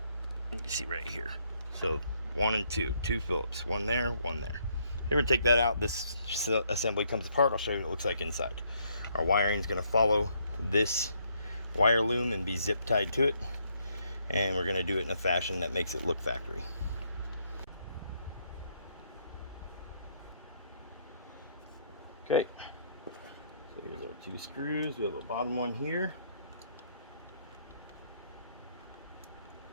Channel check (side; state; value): both; inverted; correlation -0.71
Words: You can see right here. So 1 and 2 Phillips, one there, one there. Here, we take that out. This assembly comes apart. I'll show you what it looks like inside. Our wiring is going to follow this wire loom and be zip tied to it, and we're going to do it in a fashion that makes it look factory. Okay, so here's our 2 screws. We have a bottom one here.